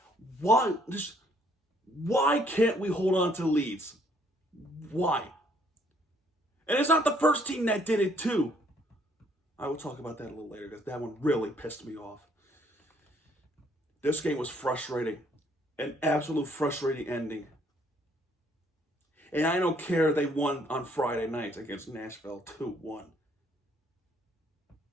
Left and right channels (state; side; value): normal; both; correlation 0.65